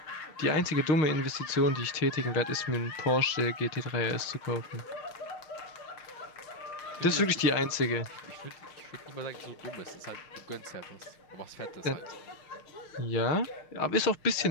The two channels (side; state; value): right; late; 6.4 ms